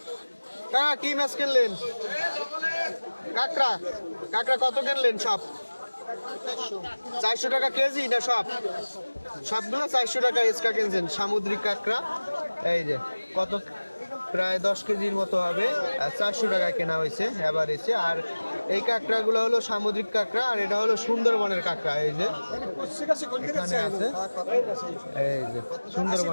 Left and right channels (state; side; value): inverted; both; correlation -1.00